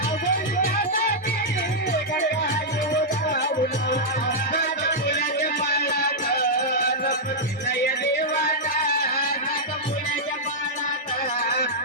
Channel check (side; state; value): both; normal; correlation -0.07